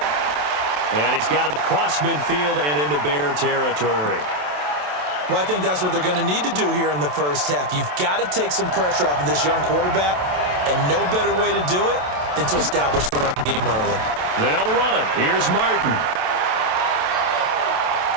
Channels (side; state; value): left; late; 27 ms